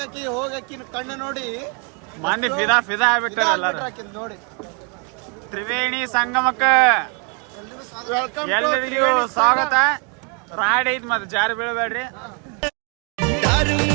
ಹೋಗಕ್ಕಿನ ಕಣ್ಣು ನೋಡಿ ಮಂದಿ ಫಿದಾ ಆಗ್ಬಿಟ್ಟಾರ ಎಲ್ಲಾರು. ಆಕಿನ್ ನೋಡಿ. ತ್ರಿವೇಣಿ ಸಂಗಮಕ್ಕ ವೆಲ್ಕಮ್ ಎಲ್ಲರಿಗೂ ಸ್ವಾಗತ. ರಾಡ್ ಐತ್ ಮತ್ತೆ ಜಾರಿ ಬೀಳಬೇಡ್ರಿ. धर्म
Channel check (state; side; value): quieter; left; 36.3 dB